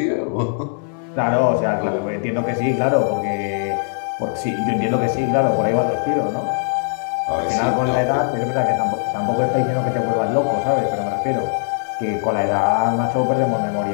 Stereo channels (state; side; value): silent; right; digital silence